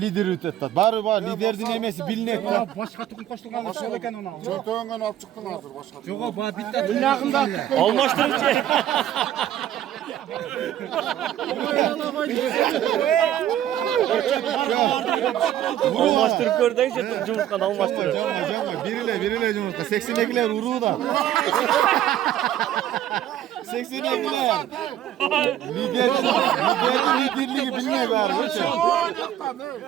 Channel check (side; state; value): left; quieter; 11.7 dB